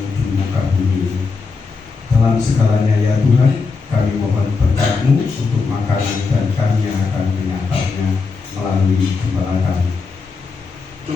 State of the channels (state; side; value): quieter; right; 4.6 dB